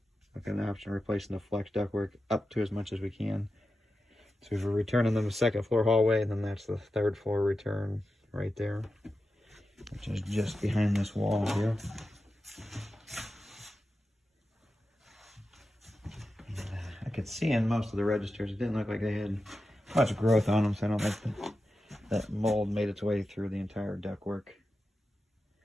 Looking at the option of replacing the flex ductwork up to as much as we can. So we're returning them to the second floor hallway, and then that's the third floor return right there, which is just behind this wall here. I could see in most of the registers, it didn't look like they had much growth on them, so I don't think that mold made its way through the entire ductwork.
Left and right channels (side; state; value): both; normal; correlation 0.91